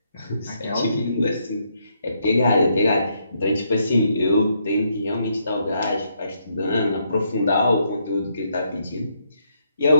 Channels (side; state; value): both; inverted; correlation -0.75